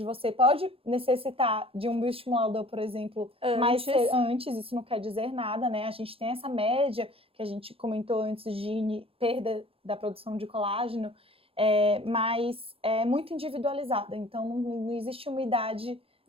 você, pode necessitar de um bioestimulador, por exemplo, antes, isso não quer dizer nada, né? A gente tem essa média que a gente comentou antes de perda da produção de colágeno, mas é muito individualizada, então não existe uma idade.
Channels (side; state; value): left; late; 0.27 ms